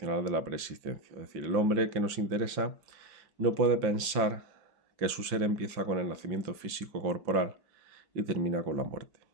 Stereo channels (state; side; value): late; left; 5.8 ms